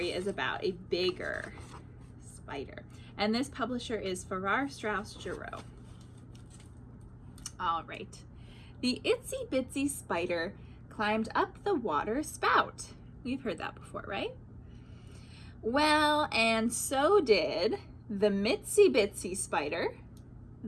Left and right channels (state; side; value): identical; both; correlation 1.00